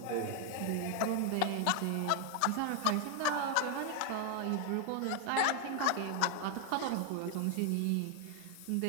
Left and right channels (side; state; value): both; different; correlation 0.00